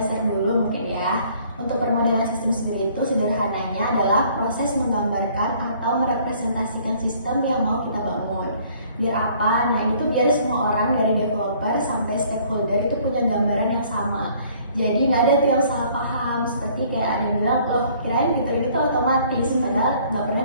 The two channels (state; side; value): inverted; both; correlation -0.59